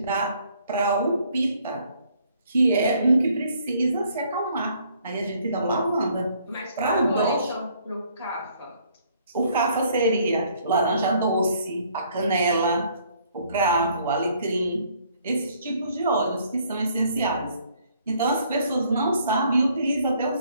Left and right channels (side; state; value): both; inverted; correlation -0.64